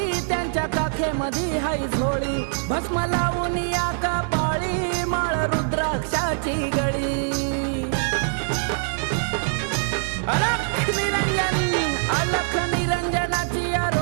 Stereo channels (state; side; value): silent; left; 63 dB below the other